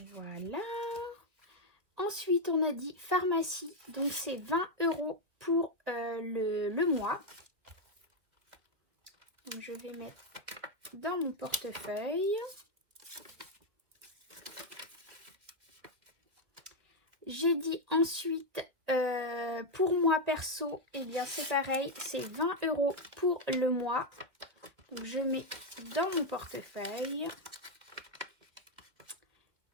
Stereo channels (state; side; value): late; left; 2.3 ms